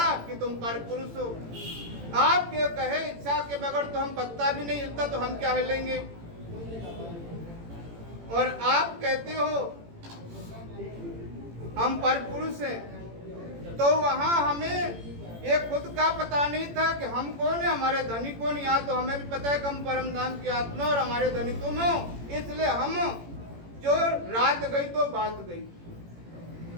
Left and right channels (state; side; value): late; left; 18 ms